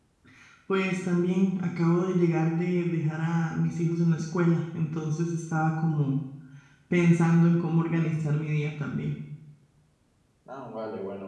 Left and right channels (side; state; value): both; identical; correlation 1.00